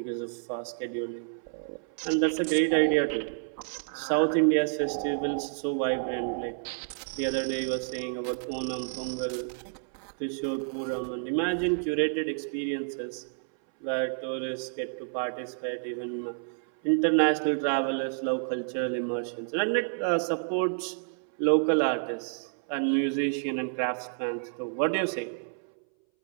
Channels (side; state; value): left; silent; 58 dB below the other